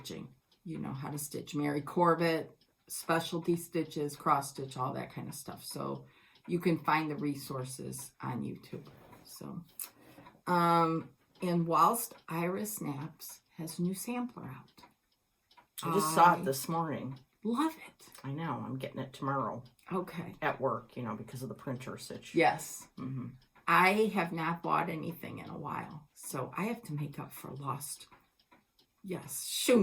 You know how to stitch. Mary Corbett, specialty stitches, cross stitch, all that kind of stuff. So you can find the resources on YouTube. So, and whilst Iris Naps has a new sampler out. I just saw it this morning. Love it. I know. I'm getting it tomorrow. Okay. At work, you know, because of the printer stitch. Yes. I have not bought anything in a while, so I have to make up for lost. Yes.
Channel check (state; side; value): identical; both; correlation 1.00